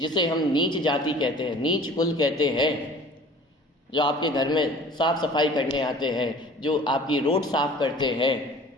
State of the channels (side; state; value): both; normal; correlation 0.46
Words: हम नीच जाति कहते हैं, नीच कुल कहते हैं, जो आपके घर में साफ सफाई करने आते हैं, जो आपकी रोड साफ करते हैं,